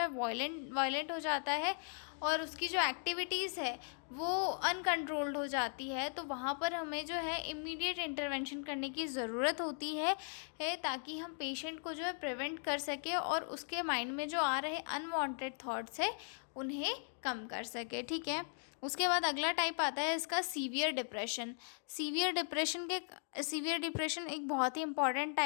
वायलेंट हो जाता है और उसकी जो एक्टिविटीज़ है वो अनकंट्रोल्ड हो जाती है। तो वहाँ पर हमें जो है इमीडिएट इंटरवेंशन करने की ज़रूरत होती है ताकि हम पेशेंट को जो है प्रिवेंट कर सके और उसके माइंड में जो आ रहे अनवांटेड थॉट्स है उन्हें कम कर सके, ठीक है। उसके बाद अगला टाइप आता है इसका सीवियर डिप्रेशन। सीवियर डिप्रेशन एक बहुत ही इंपॉर्टेंट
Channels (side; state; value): right; silent; 52 dB below the other